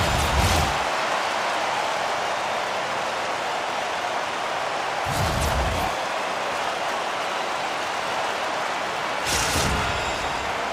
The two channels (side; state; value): both; identical; correlation 1.00